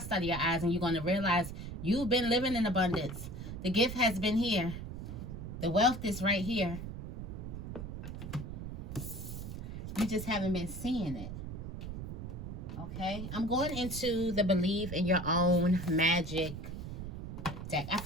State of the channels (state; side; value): noise; right; rumble, 8 dB below the sound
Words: out of your eyes, and you're going to realize you've been living in abundance. The gift has been here. The wealth is right here. You just haven't been seeing it. Okay, I'm going into the Believe in Your Own Magic deck. I